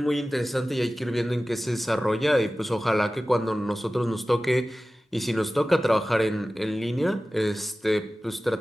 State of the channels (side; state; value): both; normal; correlation 0.96